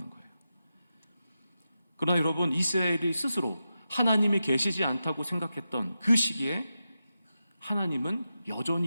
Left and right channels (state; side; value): inverted; both; correlation -0.90